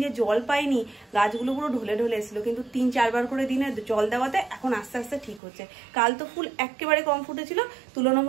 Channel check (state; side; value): drops out; left; at 5.4 s